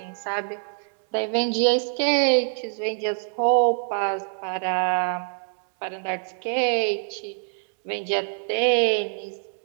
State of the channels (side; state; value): left; silent; digital silence